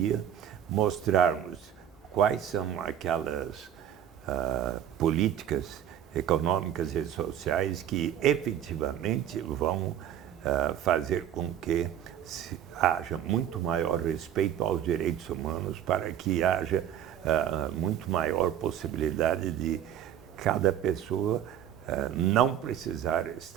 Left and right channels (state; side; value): quieter; left; 10.2 dB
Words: mostrarmos quais são aquelas políticas econômicas e sociais que efetivamente vão fazer com que haja muito maior respeito aos direitos humanos, para que haja muito maior possibilidade de cada pessoa não precisar